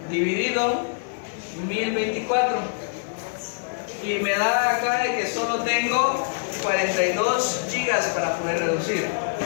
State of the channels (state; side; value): silent; right; digital silence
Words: Dividido 1024. Y me da acá de que solo tengo 42 gigas para poder reducir,